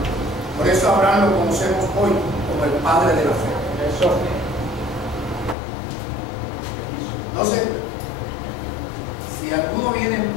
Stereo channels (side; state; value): right; drops out; at 5.6 s